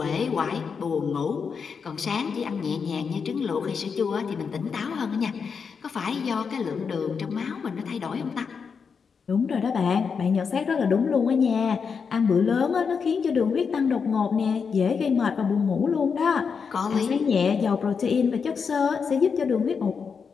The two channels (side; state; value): right; quieter; 5.9 dB